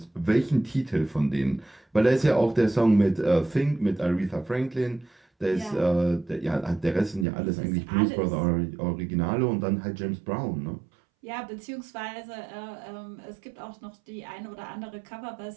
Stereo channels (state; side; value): drops out; left; at 7.2 s